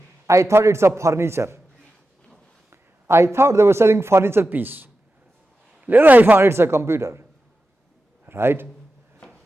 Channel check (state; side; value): normal; both; correlation 0.92